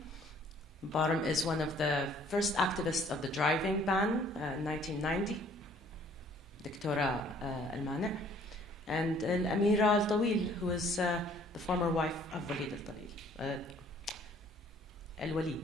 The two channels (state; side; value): normal; both; correlation 0.58